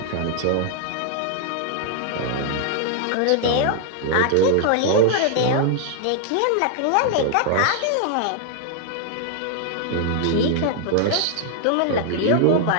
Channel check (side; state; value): both; different; correlation 0.00